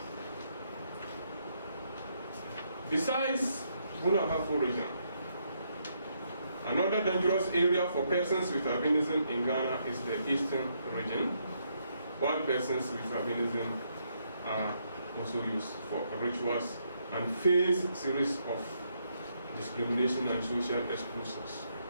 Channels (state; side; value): inverted; both; correlation -0.76